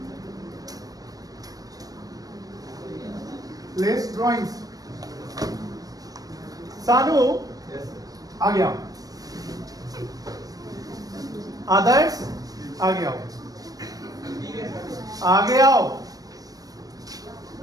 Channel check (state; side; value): late; left; 0.18 ms